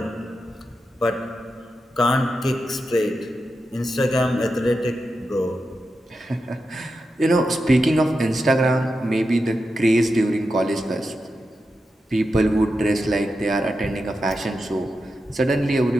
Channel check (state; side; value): normal; both; correlation 0.89